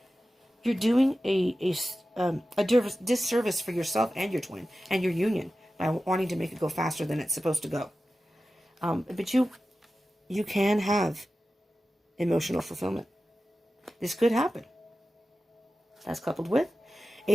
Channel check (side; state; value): both; normal; correlation 0.94